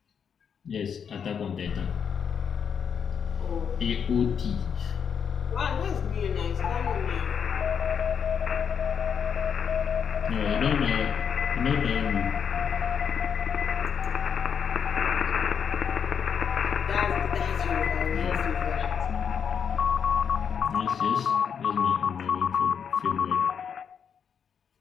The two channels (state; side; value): quieter; right; 7.2 dB